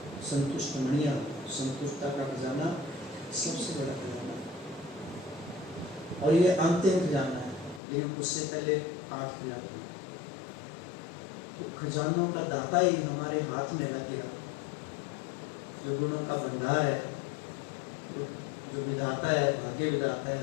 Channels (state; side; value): drops out; right; at 7.8 s